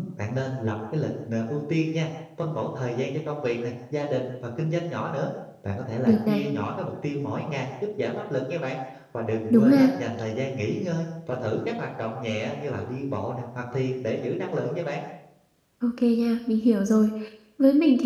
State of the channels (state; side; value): identical; both; correlation 1.00